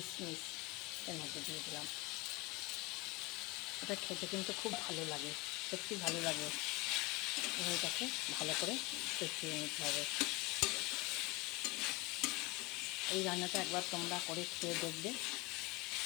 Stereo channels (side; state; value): right; quieter; 24.8 dB